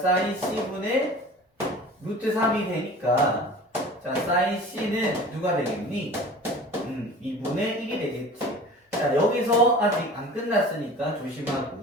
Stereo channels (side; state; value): both; normal; correlation 0.40